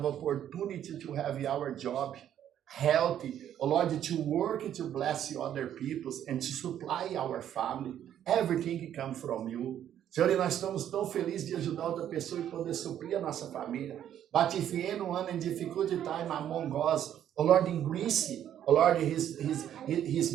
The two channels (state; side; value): quieter; left; 10.5 dB